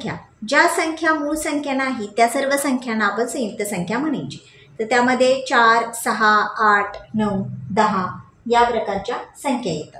ज्या संख्या मूळ संख्या नाही त्या सर्व संख्यांना आपण संयुक्त संख्या म्हणायची. तर त्यामध्ये 4, 6, 8, 9, 10 या प्रकारच्या संख्या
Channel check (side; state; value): both; identical; correlation 1.00